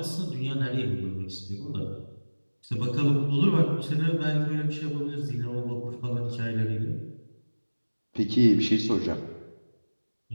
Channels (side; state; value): both; inverted; correlation -1.00